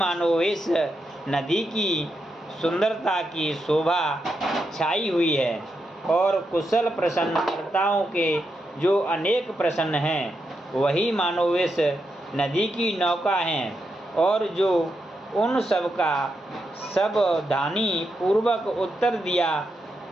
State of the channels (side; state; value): both; normal; correlation 0.84